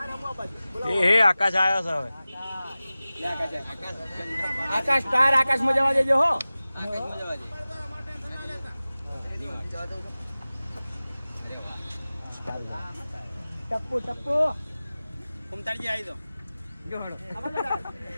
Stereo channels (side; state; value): both; inverted; correlation -0.97